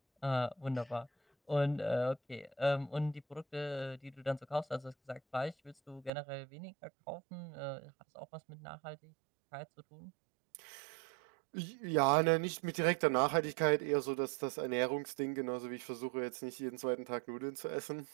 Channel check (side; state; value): left; drops out; at 6.1 s